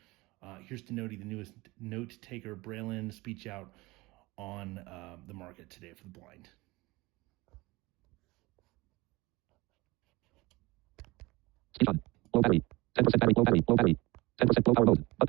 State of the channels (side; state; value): left; quieter; 21.9 dB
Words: here's to Notey, the newest Notetaker Braille-in speech out on the market today for the blind. Speech on. Low battery. 10% battery. Low battery. Low battery. 10% low power mode.